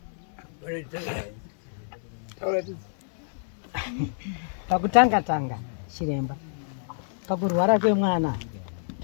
Pakutanga chiremba pakurwara kwemwana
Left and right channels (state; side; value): silent; right; digital silence